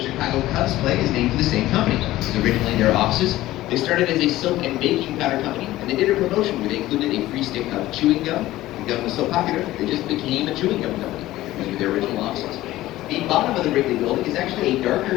Chicago Cubs play, is named for the same company. This is originally their offices. They started as a soap and baking powder company, and they did a promotion where they included a free stick of chewing gum. The gum was so popular, they just became a chewing gum company. These were their original offices. The bottom of the Wrigley Building is actually a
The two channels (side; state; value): right; quieter; 16.0 dB